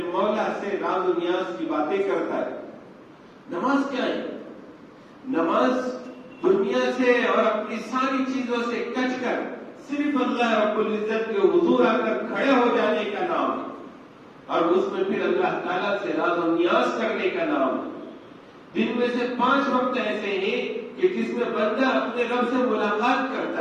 مولا سے راز و نیاز کی باتیں کرتا ہے۔ نماز کیا ہے؟ نماز دنیا سے اور اپنی ساری چیزوں سے کچ کر صرف اللہ رب العزت کے حضور آ کر کھڑے ہو جانے کا نام ہے، اور اس میں پھر اللہ تعالیٰ سے راز و نیاز کرنے کا نام ہے۔ دن میں سے 5 وقت ایسے ہیں کہ جس میں بندہ اپنے رب سے ملاقات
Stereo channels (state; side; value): identical; both; correlation 1.00